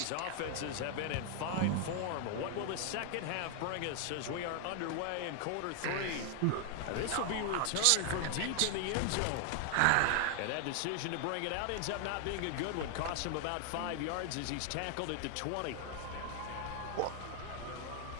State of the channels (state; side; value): different; both; correlation 0.00